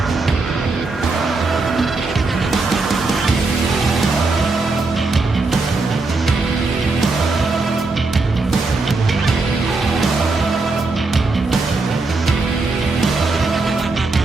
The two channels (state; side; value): quieter; left; 3.6 dB